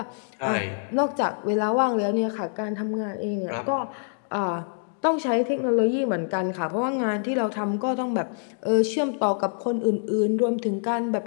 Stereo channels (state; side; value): silent; right; digital silence